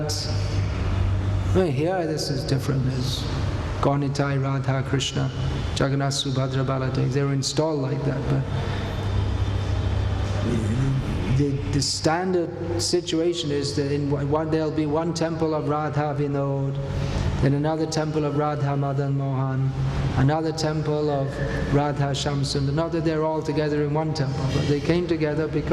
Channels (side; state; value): both; identical; correlation 1.00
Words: well, here this is different. There's Gaunitai, Radha, Krishna, Jagannath, Subhadra, Baladev. They were installed like that. But the standard situation is that there'll be one temple of Radha Vinod, then another temple of Radha Madan Mohan, another temple of Radha Shamsund. Not that they're all together in one temple, but they came together